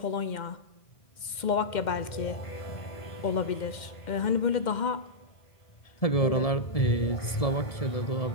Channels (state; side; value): late; right; 2.1 ms